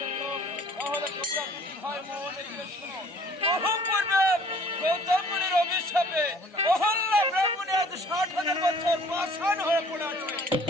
তাহলে তোমরা দুটি ভাই মনে দিয়ে শোনো। বহু পূর্বে গৌতম মুনির অভিশাপে অহল্যা ব্রাহ্মণী আজ 60,000 বছর পাষাণ হয়ে পড়ে আছে।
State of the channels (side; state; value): both; normal; correlation 0.54